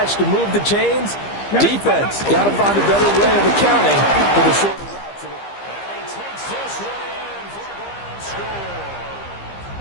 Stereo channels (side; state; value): right; late; 15 ms